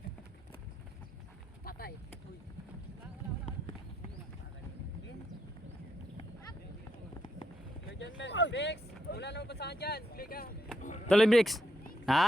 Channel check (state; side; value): normal; both; correlation 0.79